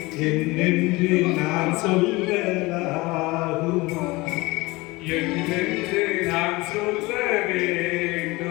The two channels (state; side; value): quieter; right; 22.3 dB